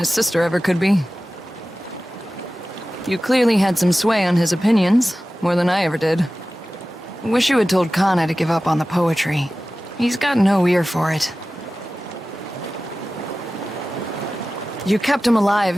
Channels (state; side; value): normal; both; correlation 0.95